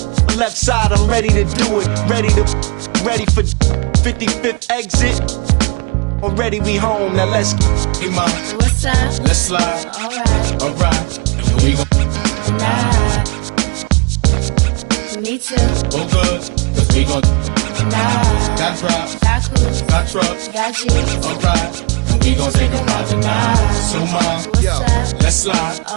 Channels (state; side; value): quieter; left; 30.7 dB